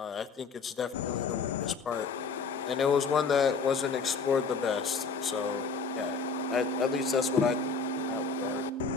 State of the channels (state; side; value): quieter; right; 4.8 dB